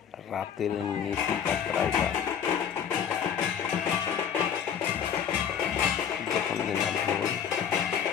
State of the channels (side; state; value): right; quieter; 8.2 dB